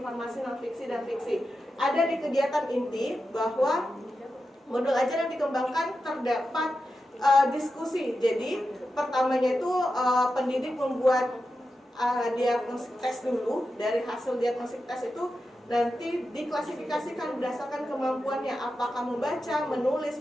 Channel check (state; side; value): normal; both; correlation 0.90